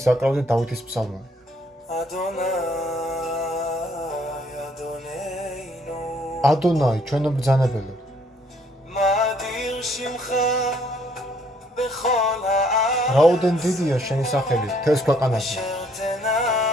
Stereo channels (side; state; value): both; normal; correlation 0.65